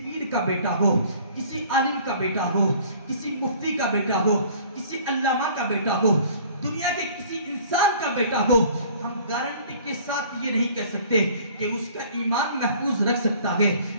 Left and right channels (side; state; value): both; inverted; correlation -0.51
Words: کا بیٹا ہو, کسی عالم کا بیٹا ہو, کسی مفتی کا بیٹا ہو, کسی علامہ کا بیٹا ہو, دنیا کے کسی انسان کا بیٹا ہو, ہم گارنٹی کے ساتھ یہ نہیں کہہ سکتے کہ اس کا ایمان محفوظ رکھ سکتا ہے,